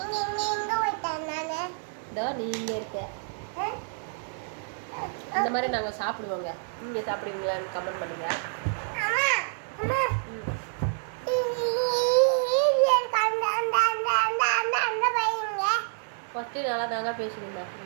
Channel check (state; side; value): silent; left; 57 dB below the other